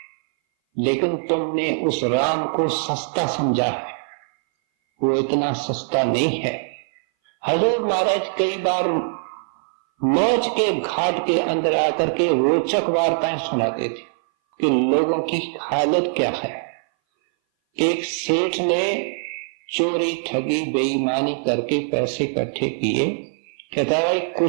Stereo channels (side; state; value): left; silent; 60 dB below the other